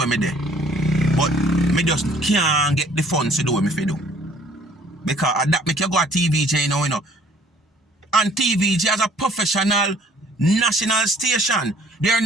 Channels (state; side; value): normal; both; correlation 0.58